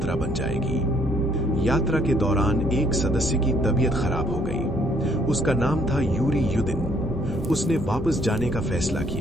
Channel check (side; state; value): both; normal; correlation 0.66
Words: बन जाएगी। यात्रा के दौरान एक सदस्य की तबीयत खराब हो गई। उसका नाम था यूरी युदिन। उसने वापस जाने का फैसला